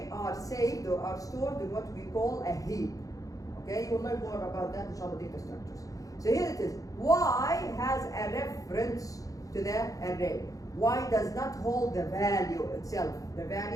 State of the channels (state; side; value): late; right; 0.17 ms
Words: are saved or are stored in what we call a heap. Okay, you will learn more about that in inshallah data structures. So here it is. Y has a reference to the array. Y does not hold the value itself, the